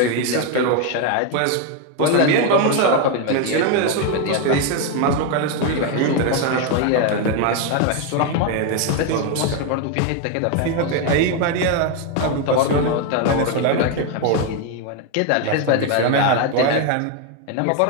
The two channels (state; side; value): different; both; correlation 0.01